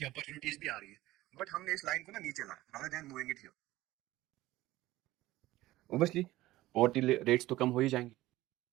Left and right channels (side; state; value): left; quieter; 17.0 dB